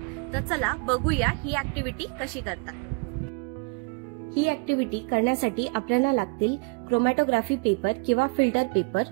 तर चला बघूया ही ॲक्टिव्हिटी कशी करतात। ही ॲक्टिव्हिटी करण्यासाठी आपल्याला लागतील क्रोमॅटोग्राफी पेपर किंवा फिल्टर पेपर।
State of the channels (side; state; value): left; quieter; 31.2 dB